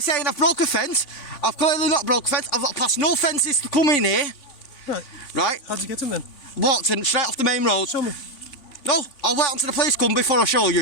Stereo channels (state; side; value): late; right; 3.5 ms